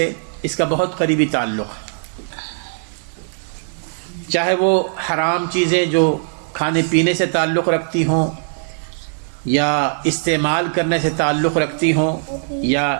اس کا بہت قریبی تعلق ہے۔ چاہے وہ حرام چیزیں جو کھانے پینے سے تعلق رکھتی ہوں، یا استعمال کرنے سے تعلق رکھتی ہوں، یا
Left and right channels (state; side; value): silent; left; digital silence